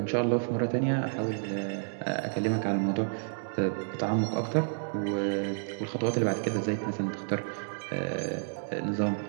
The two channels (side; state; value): left; silent; digital silence